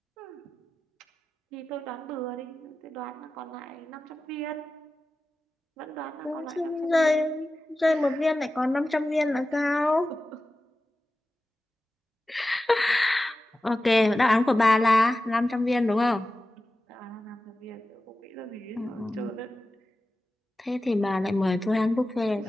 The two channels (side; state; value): both; normal; correlation 0.94